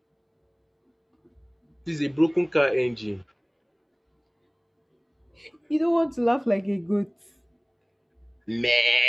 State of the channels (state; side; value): identical; both; correlation 1.00